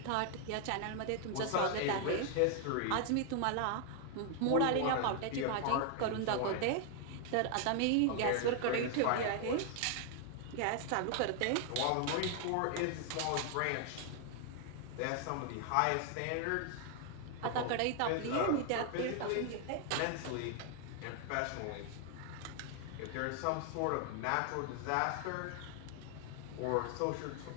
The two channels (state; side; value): different; both; correlation 0.00